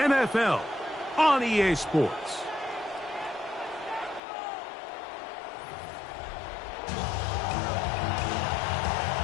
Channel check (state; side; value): drops out; right; at 4.2 s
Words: on EA Sports.